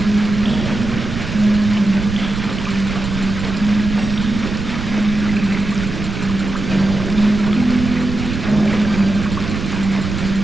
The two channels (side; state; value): right; noise; rumble, 6 dB below the sound